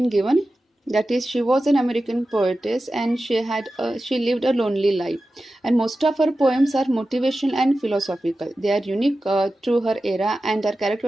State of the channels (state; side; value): normal; both; correlation 0.93